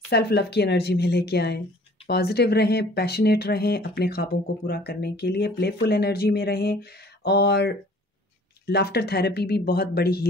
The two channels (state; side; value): normal; both; correlation 0.52